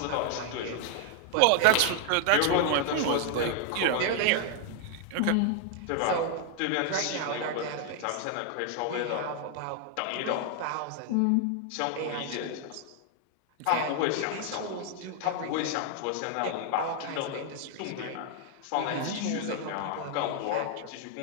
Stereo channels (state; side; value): different; both; correlation 0.00